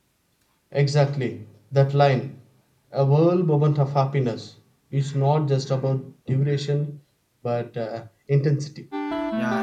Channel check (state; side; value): identical; both; correlation 1.00